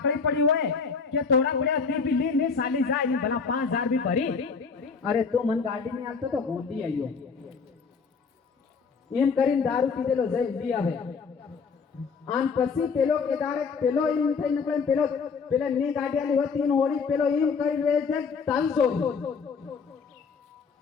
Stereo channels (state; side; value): quieter; right; 5.4 dB